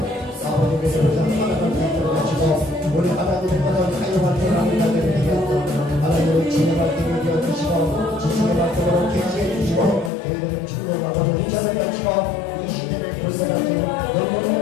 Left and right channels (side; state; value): right; drops out; at 10.1 s